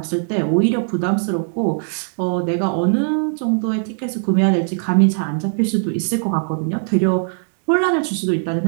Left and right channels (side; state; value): left; silent; digital silence